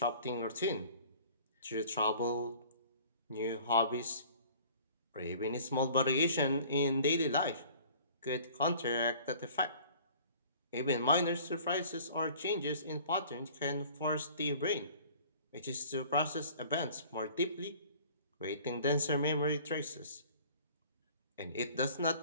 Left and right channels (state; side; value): inverted; both; correlation -0.49